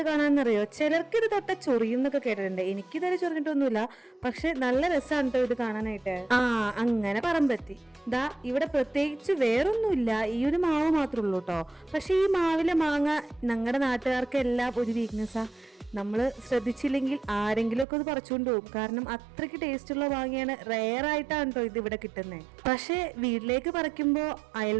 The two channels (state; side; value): drops out; left; at 17.9 s